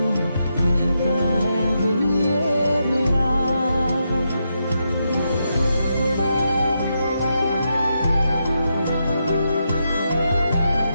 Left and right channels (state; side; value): inverted; both; correlation -0.83